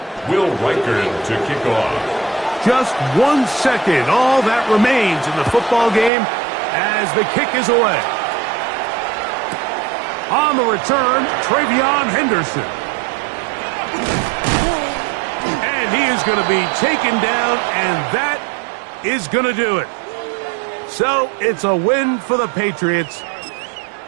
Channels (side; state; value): left; drops out; at 6.1 s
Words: Will Riker to kick off. Just 1 second, all that remains in the football game as the kick is away. On the return, Travion Henderson. And he is going to be taken down, and that is going to do it. So it's a win for the Patriots.